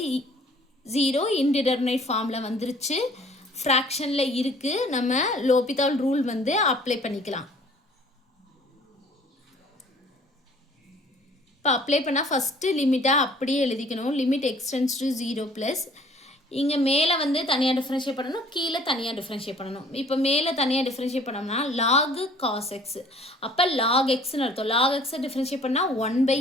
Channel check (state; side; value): normal; both; correlation 0.54